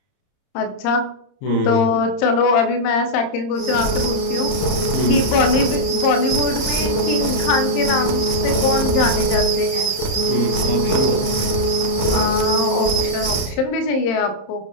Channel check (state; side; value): late; right; 30 ms